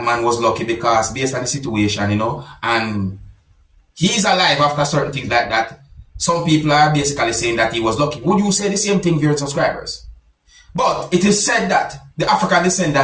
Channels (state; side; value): identical; both; correlation 1.00